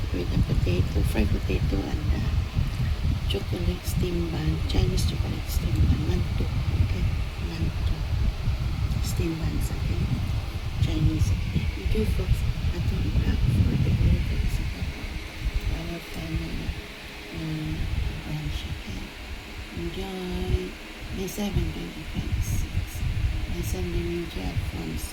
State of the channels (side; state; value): both; identical; correlation 1.00